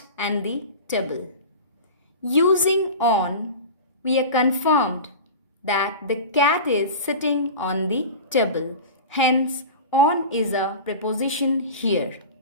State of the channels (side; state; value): both; inverted; correlation -0.32